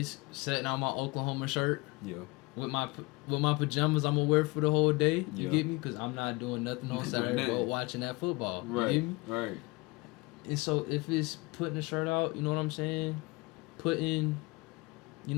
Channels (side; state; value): right; quieter; 24.8 dB